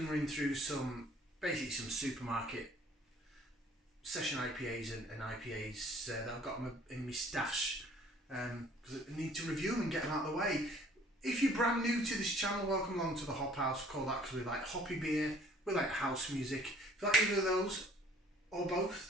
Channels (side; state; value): both; normal; correlation 0.56